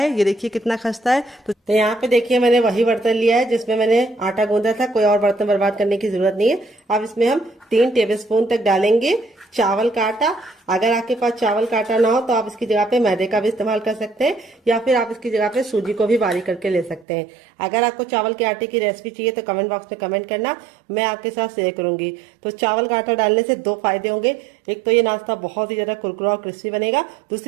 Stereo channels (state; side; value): drops out; left; at 17.1 s